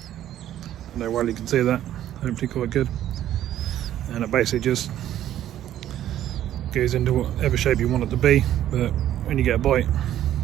I don't know why you can see that, hopefully quite good. And it basically just goes into whatever shape you want it to be, but when you get a bite,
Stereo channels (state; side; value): quieter; left; 12.0 dB